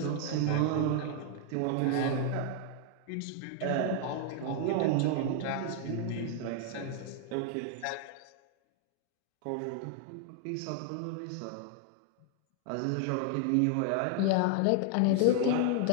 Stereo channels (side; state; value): both; different; correlation 0.00